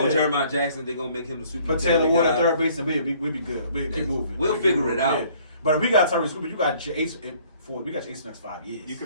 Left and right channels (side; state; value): both; inverted; correlation -0.58